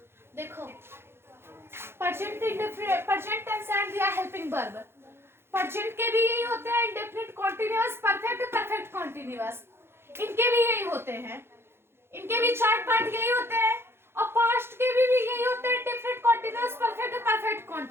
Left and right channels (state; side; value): late; left; 0.12 ms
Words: देखो प्रेजेंट टेंस एंड दिया हेल्पिंग वर्ब। प्रेजेंट के भी यही होते हैं, indefinite continuous, perfect, perfect continuous, इनके भी यही होते हैं। इनके भी 4 पार्ट यही होते हैं। और पास्ट के भी यही होते हैं, indefinite continuous, perfect, perfect